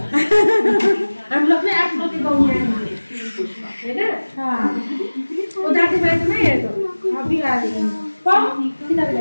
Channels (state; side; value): inverted; both; correlation -1.00